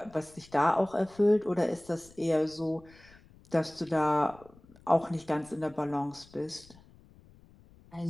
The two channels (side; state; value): left; noise; rumble, 25 dB below the sound